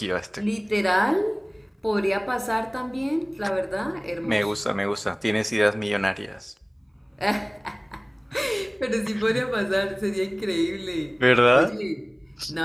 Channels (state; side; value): identical; both; correlation 1.00